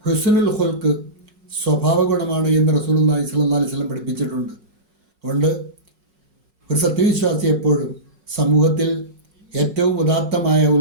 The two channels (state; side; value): late; left; 5.5 ms